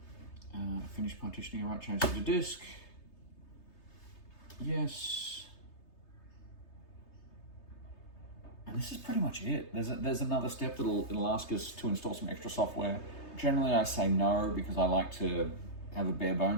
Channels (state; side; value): late; right; 3.3 ms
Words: Finish partitioning. All right, change to the disk. Yes. And this is pretty much it. There's another step it'll ask us to install some extra software. Generally, I say no because I like to have a bare